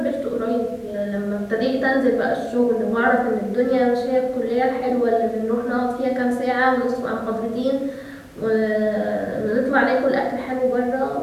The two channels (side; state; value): both; identical; correlation 1.00